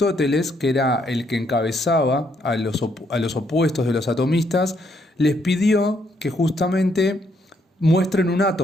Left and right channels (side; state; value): both; normal; correlation 0.72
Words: que era el que encabezaba a los opuestos de los atomistas, les pidió que justamente muestren un